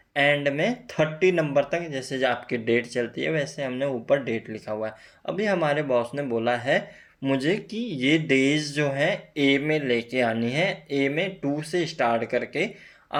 एंड में 30 नंबर तक जैसे जो आपकी डेट चलती है वैसे हमने ऊपर डेट लिखा हुआ है। अभी हमारे बॉस ने बोला है मुझे कि ये डेज जो है ए में लेके आनी है। ए में 2 से स्टार्ट करके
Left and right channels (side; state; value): both; identical; correlation 1.00